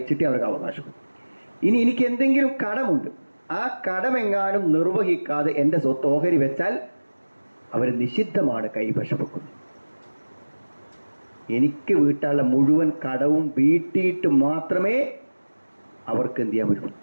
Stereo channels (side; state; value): both; inverted; correlation -1.00